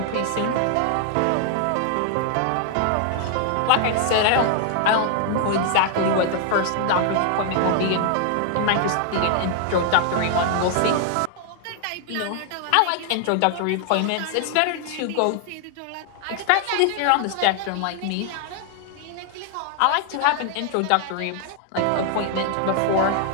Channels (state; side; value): different; both; correlation 0.00